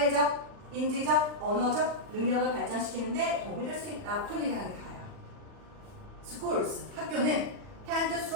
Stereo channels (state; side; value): late; left; 40 ms